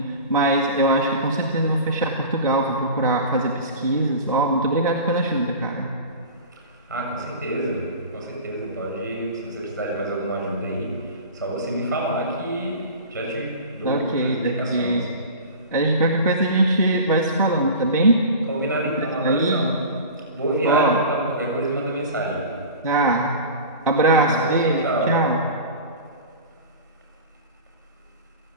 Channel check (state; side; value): inverted; both; correlation -0.35